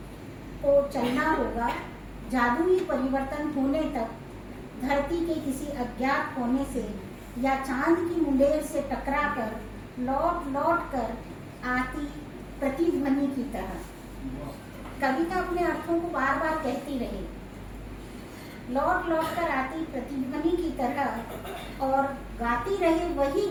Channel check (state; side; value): identical; both; correlation 1.00